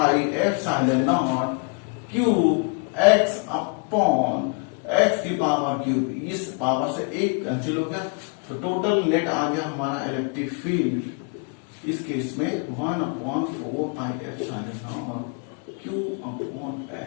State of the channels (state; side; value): quieter; right; 33.2 dB